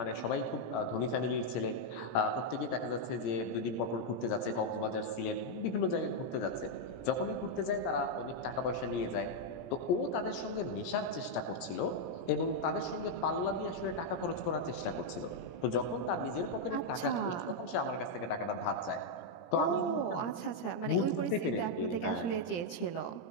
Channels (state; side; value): late; right; 17 ms